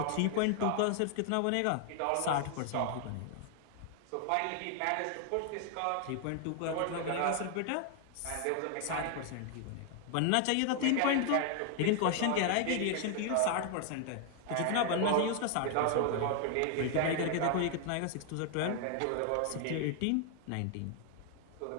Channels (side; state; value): both; different; correlation 0.00